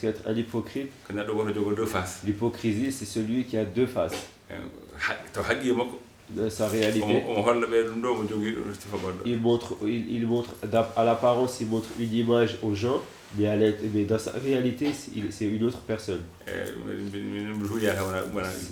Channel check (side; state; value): both; identical; correlation 1.00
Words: un hypocrite, l'hypocrisie c'est celui qui a deux faces. De sa réalité, il montre à l'apparence, il montre une image aux gens, mais dans sa réalité, c'est une autre personne.